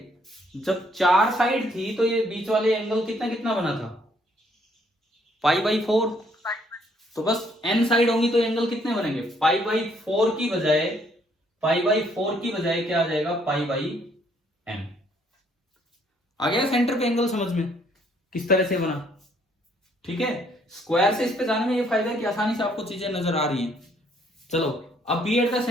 जब 4 साइड थी तो ये बीच वाले एंगल कितना कितना बना था? Pi by 4। तो बस n साइड होंगी तो एंगल कितने बनेंगे? पाई बाई 4 की बजाय, पाई बाई 4 की बजाय क्या आ जाएगा? पाई बाई n। आ गया सेंटर पे एंगल समझ में किस तरह से बना? ठीक है, स्क्वायर से इस पे जाने में ये फायदा है कि आसानी से आपको चीजें नजर आ रही हैं। चलो अब बी एट द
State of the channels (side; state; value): both; normal; correlation 0.67